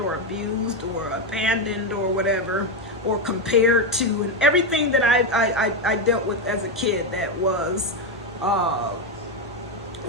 abused, or abandoned, or whatever, or compared to, and everything that I dealt with as a kid that was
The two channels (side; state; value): both; normal; correlation 0.08